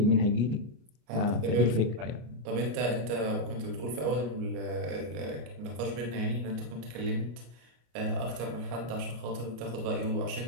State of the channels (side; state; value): left; late; 34 ms